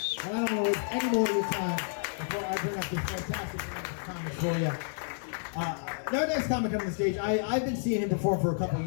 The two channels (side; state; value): right; silent; digital silence